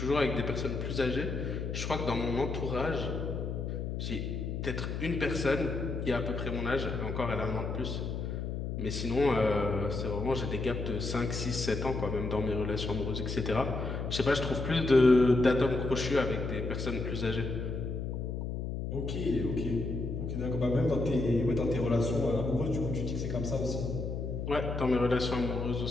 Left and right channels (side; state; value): left; noise; hum, 3 dB below the sound